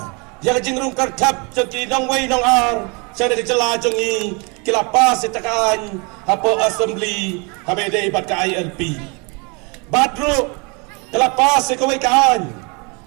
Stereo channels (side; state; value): left; quieter; 31.6 dB